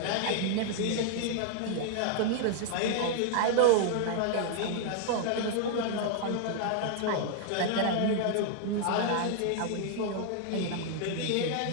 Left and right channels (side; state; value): both; different; correlation -0.01